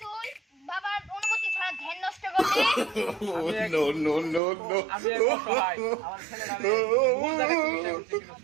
তুই বাবার অনুমতি ছাড়া ধ্যান নষ্ট করলি? আমি এক অসহায়, আমার ছেলেটা ভুল জায়গায় চিকিৎসা করছে।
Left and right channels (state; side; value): drops out; left; at 4.4 s